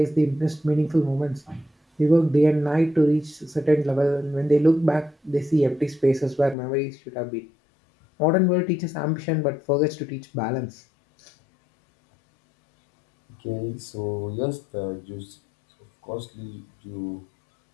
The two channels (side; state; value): right; drops out; at 6.6 s